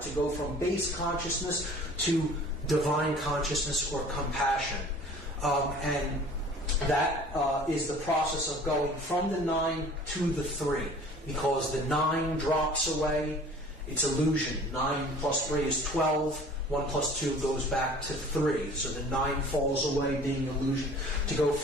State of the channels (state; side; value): normal; both; correlation 0.48